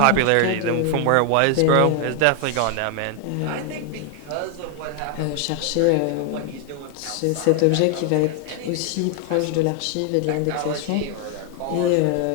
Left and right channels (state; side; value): different; both; correlation 0.00